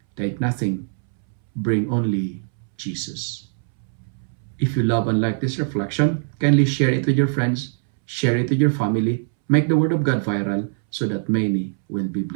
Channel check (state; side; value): silent; left; 64 dB below the other